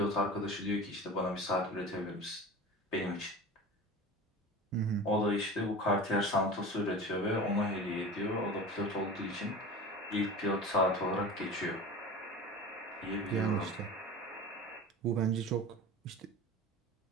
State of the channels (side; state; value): both; normal; correlation 0.34